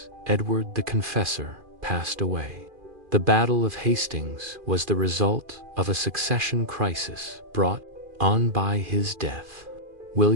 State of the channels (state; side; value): late; left; 2.4 ms